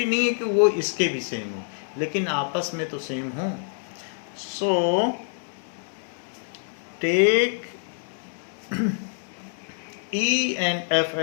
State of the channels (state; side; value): silent; right; 61 dB below the other